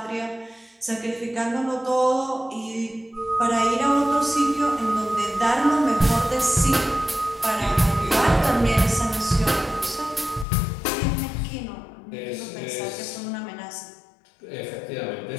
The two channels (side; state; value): right; drops out; at 10.5 s